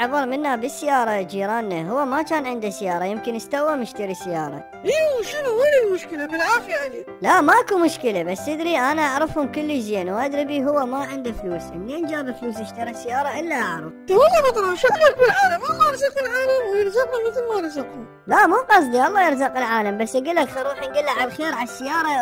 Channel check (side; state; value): both; identical; correlation 1.00